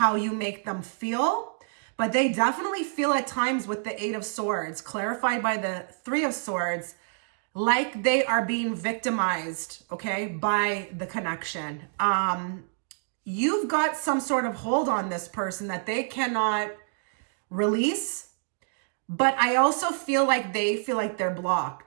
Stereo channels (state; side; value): silent; left; digital silence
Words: you make them feel. But they definitely feel at times with the Eight of Swords, clarified by the Three of Swords, like they are being victimized, okay, by the connection. You've got some sort of hold on this person that they cannot release, but I also feel like they feel like they're